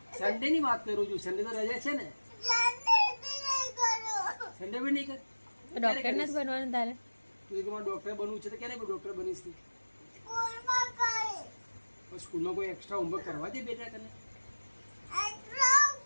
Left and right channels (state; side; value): inverted; both; correlation -1.00